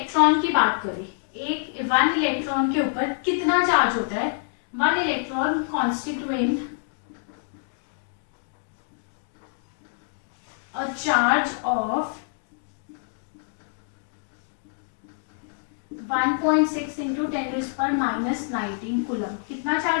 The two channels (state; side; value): silent; right; digital silence